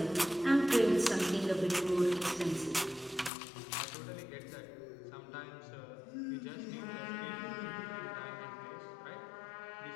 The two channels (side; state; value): right; drops out; at 3.3 s